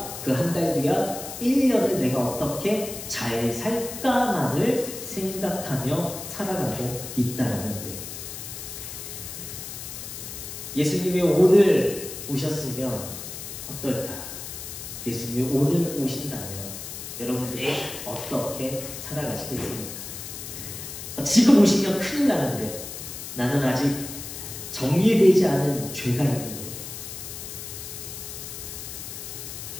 그 한 달 뒤와 1년을 내가 어떻게 잘 살까만을 생각하며 살아가고 있다는 거예요. 예수님이 오늘 오셨으면 어떨까? 예수님이 오늘 오신다면 여러분들이 어떻게 살아가시겠습니까? 지금 오시면 큰일 나는데 나는 아직 정리되지 않은 죄가 있는데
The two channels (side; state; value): left; noise; hiss, 9 dB below the sound